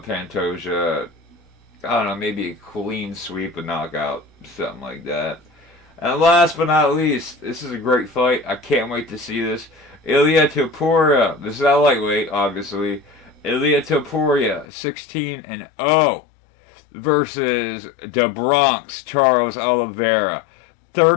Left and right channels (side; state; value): right; drops out; at 14.7 s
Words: Pantoja. I don't know, maybe a clean sweep, a knockout, something like that. And last but not least, this is a great fight. I can't wait to see this. Ilia Topuria. This is a lightweight, obviously. Ilia Topuria, 16-0 versus the Bronx Charles Oliveira,